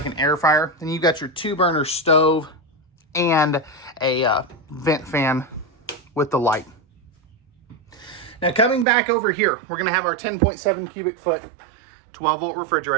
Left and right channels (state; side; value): drops out; left; at 8.8 s